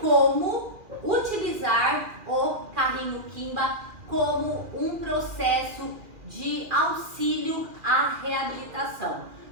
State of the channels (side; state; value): left; late; 2.4 ms